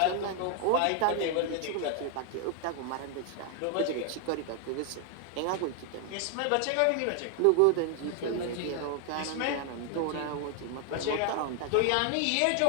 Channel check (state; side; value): different; both; correlation 0.00